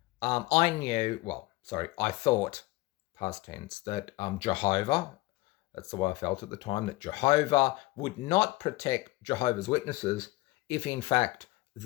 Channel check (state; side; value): quieter; right; 20.3 dB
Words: I thought, past tense, that Jehovah, that's the way I felt at the time, that Jehovah would not protect Jehovah's Witnesses if, in fact,